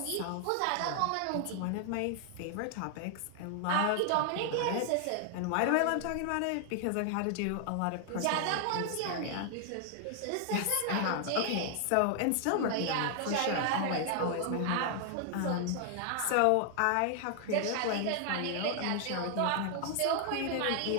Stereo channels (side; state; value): both; different; correlation 0.00